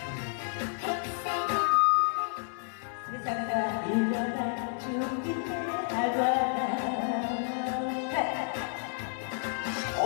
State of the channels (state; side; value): silent; right; 57 dB below the other